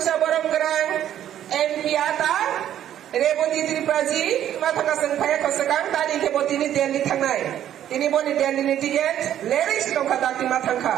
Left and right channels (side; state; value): left; quieter; 11.1 dB